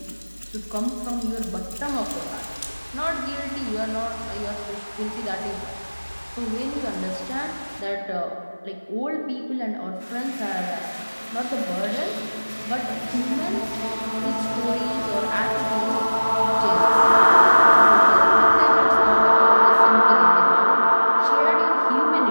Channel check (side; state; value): both; inverted; correlation -1.00